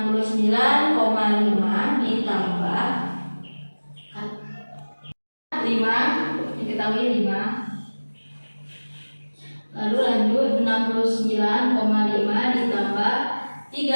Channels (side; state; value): both; inverted; correlation -1.00